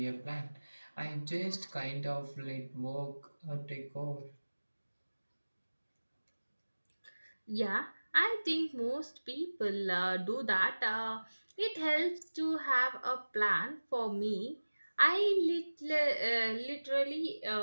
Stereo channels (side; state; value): both; inverted; correlation -1.00